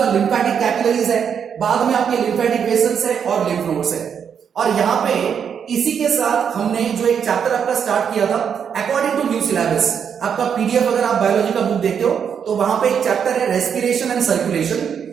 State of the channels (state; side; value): quieter; left; 7.5 dB